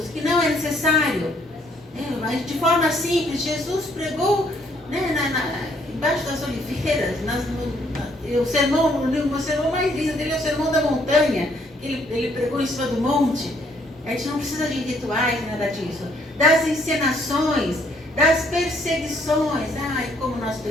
que não é necessário, mas de forma simples. Jesus pregou, né, embaixo das oliveiras, o sermão mais lindo dele é o Sermão da Montanha, ele pregou em cima do monte. A gente não precisa de rituais, nada disso. Das encenações, das perseguições. Ai, como nós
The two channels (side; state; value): both; normal; correlation 0.67